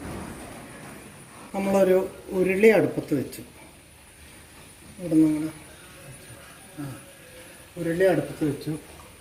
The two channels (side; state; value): both; identical; correlation 1.00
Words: നമ്മളൊരു ഉരുളി അടുപ്പത്ത് വെച്ചു. ഇവിടെ നമ്മൾ ഉരുളി അടുപ്പത്ത് വെച്ചു.